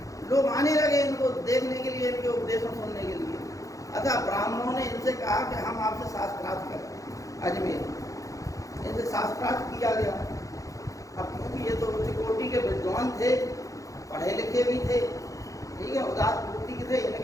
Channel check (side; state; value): right; late; 0.16 ms